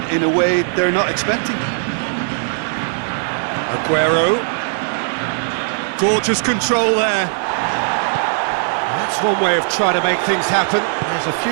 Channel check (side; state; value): left; silent; 67 dB below the other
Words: in a way they're not expecting. Aguero. Gorgeous control there. That's one way of trying to make things happen. There's a